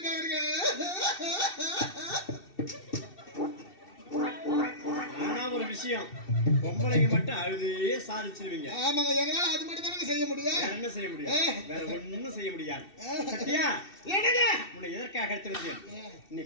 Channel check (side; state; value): right; late; 2.7 ms